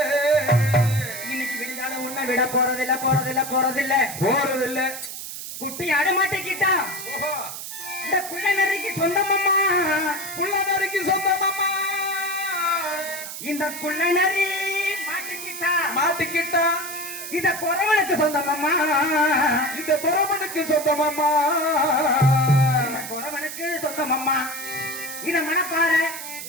உன்னை விட போறதில்லை போறதில்லை போறதில்லை போறதில்லை. குட்டி ஆட மாட்டேக்கிட்டா இந்த புள்ள நரிக்கு சொந்தமம்மா. புள்ள நரிக்கு சொந்தமம்மா. இந்த புள்ள நரி மாட்டிக்கிட்டா மாட்டிக்கிட்டா இந்த குறவனுக்கு சொந்தமம்மா. இந்த குறவனுக்கு சொந்தமம்மா. குறவனுக்கு சொந்தமம்மா. இத மனப்பாற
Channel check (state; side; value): noise; right; hiss, 9 dB below the sound